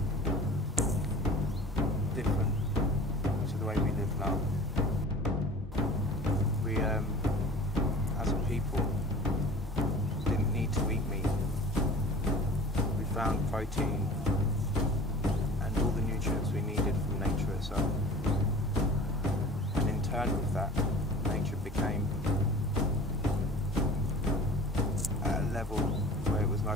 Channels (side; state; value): both; normal; correlation 0.42